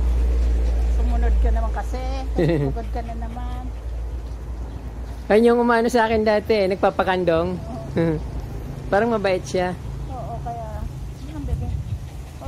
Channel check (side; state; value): both; identical; correlation 1.00